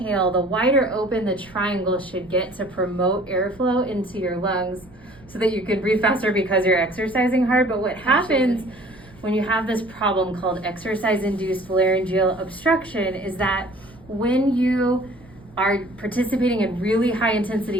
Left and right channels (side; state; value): right; noise; rumble, 24 dB below the sound